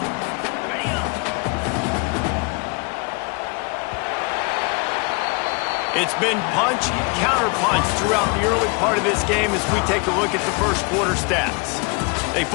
It's been punch, counter-punch throughout the early part of this game as we take a look at the first quarter stats. They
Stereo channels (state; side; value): quieter; right; 30.9 dB